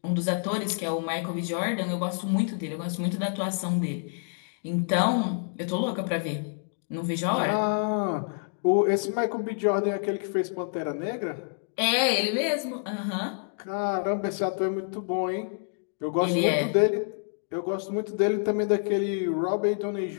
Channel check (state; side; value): silent; right; digital silence